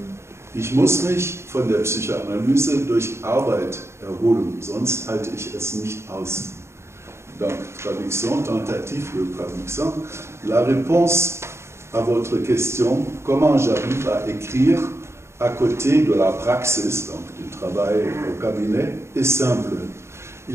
ich muss mich von der Psychoanalyse durch Arbeit erholen, sonst halte ich es nicht aus. donc traduction, tentative de traduction. La réponse à votre question, comment j'arrive à écrire à côté de la praxis, donc du travail au cabinet, est simple.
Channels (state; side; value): late; left; 0.13 ms